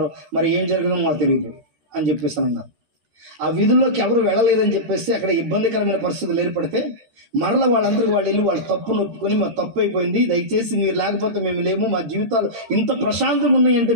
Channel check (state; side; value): late; left; 13 ms